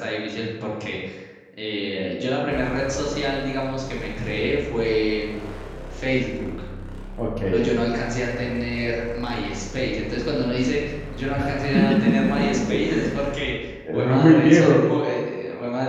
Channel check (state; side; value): identical; both; correlation 1.00